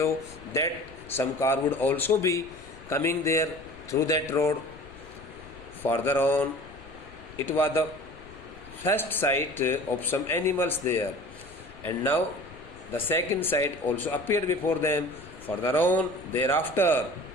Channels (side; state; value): left; noise; rumble, 21 dB below the sound